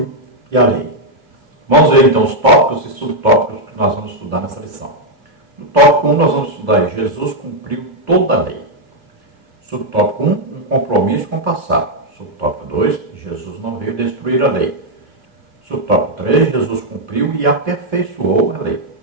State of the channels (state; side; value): late; left; 2.7 ms